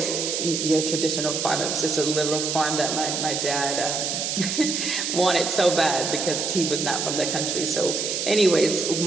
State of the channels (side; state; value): right; noise; hiss, 1 dB below the sound